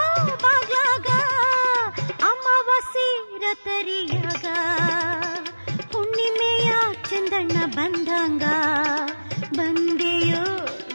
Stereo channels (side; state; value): both; inverted; correlation -1.00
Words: ಬಾಗ್ಲಾಗ, ಅಮಾವಾಸ್ಯೆ ತರಿಯಾಗ ಹುಣ್ಣಿಮೆಯ ಚಂದಣ್ಣ ಬಂದಂಗ ಬಂದೆಯೋ